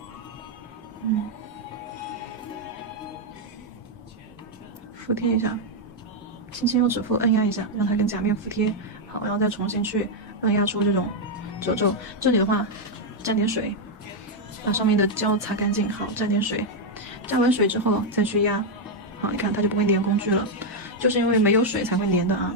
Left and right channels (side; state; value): both; normal; correlation 0.00